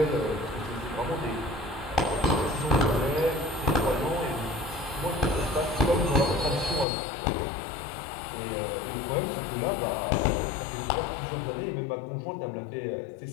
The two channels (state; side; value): drops out; right; at 6.9 s